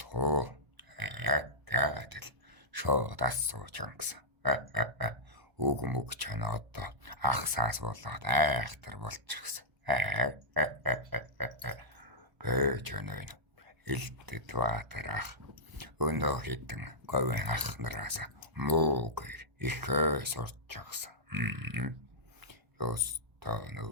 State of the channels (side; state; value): left; late; 1.3 ms